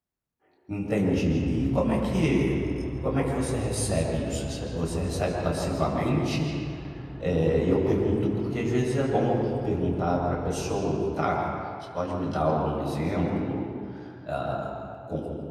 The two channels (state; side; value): identical; both; correlation 1.00